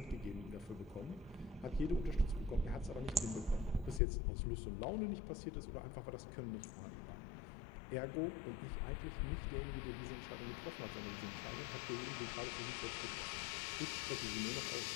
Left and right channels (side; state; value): right; drops out; at 4.0 s